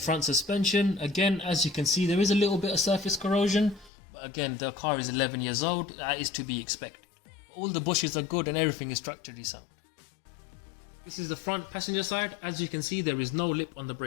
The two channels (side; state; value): right; drops out; at 3.9 s